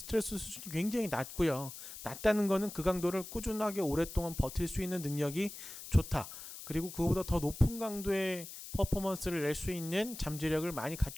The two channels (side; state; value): left; noise; hiss, 12 dB below the sound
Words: 수준이 굉장히 낮고요. 낮다는 거는 그 강도를 꾸준하게 오랫동안 버틸 수 있는 능력이 좋다. 그리고 그거보다 더 높은 강도의 퍼포먼스를 낼 수 있는 잠재력을 많이